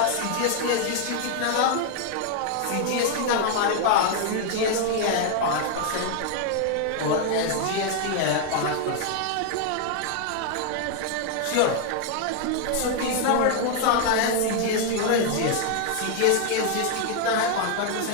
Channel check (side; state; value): both; different; correlation 0.00